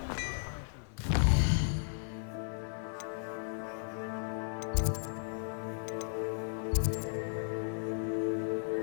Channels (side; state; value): right; silent; 54 dB below the other